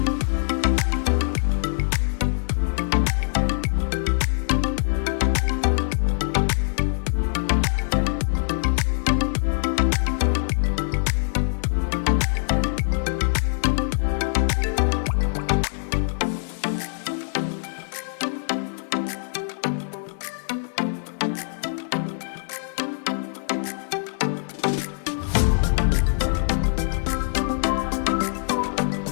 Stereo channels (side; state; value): right; silent; digital silence